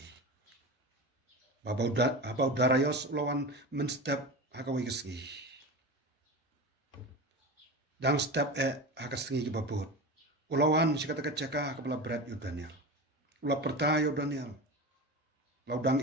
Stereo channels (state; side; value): normal; both; correlation 0.27